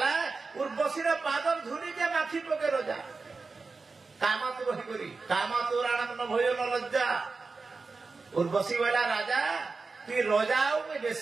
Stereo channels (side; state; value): left; quieter; 4.2 dB